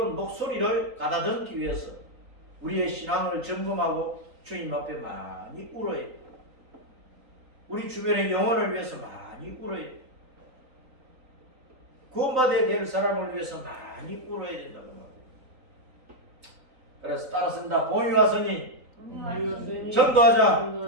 목소리를 가다듬기 위해서 우리의 신앙을 점검하고 주님 앞에 많이 울어야 돼. 우리 주변의 영혼을 위해서 많이 울어야 돼. 구원받아야 될 사람을 위해서 많이 울어야 된다고 말이에요. 그래서 따라쓴다. 봄이 왔으니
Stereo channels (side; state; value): left; late; 3.9 ms